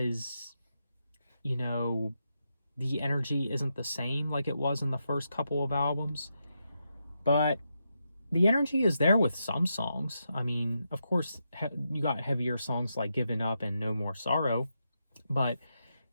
as, the energy isn't the same like it was in the first couple of albums. But the energy is there with some songs. I mean, of course, you got heavier songs like Giving Up and No More Sorrow. But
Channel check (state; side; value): inverted; both; correlation -0.84